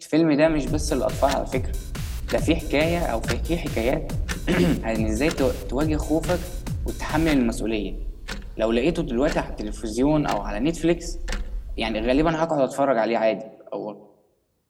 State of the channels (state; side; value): identical; both; correlation 1.00